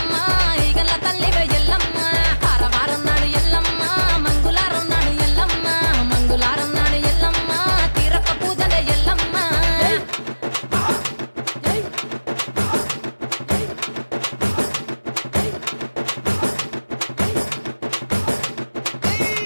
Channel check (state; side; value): inverted; both; correlation -1.00